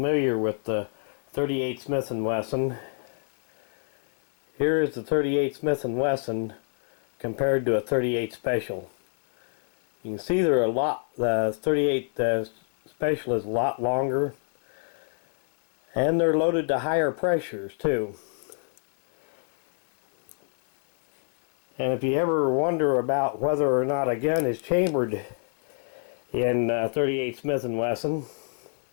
with the 38 Smith & Wesson, here is the 38 Smith & Wesson compared to a 38 Special. You can see they're the 38 Special is a lot longer, and they're loaded to higher pressures too. And if you ever wonder about whether or not a gun is chambered in 38 Smith & Wesson,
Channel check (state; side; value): silent; right; 60 dB below the other